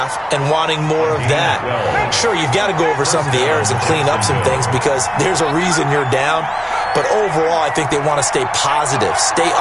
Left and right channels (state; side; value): identical; both; correlation 1.00